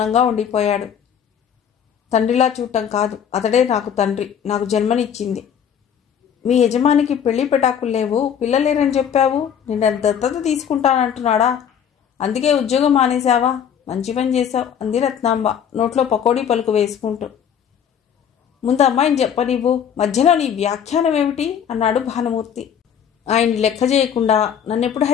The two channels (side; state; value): right; quieter; 8.4 dB